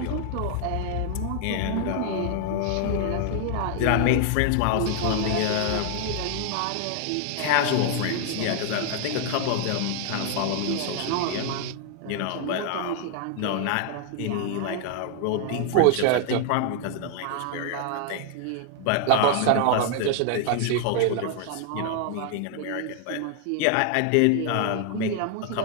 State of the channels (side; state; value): both; different; correlation 0.00